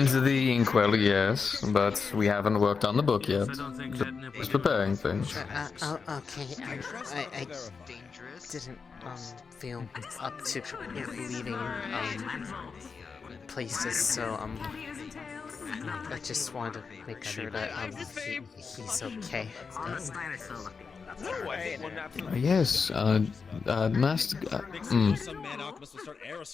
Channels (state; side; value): quieter; right; 5.2 dB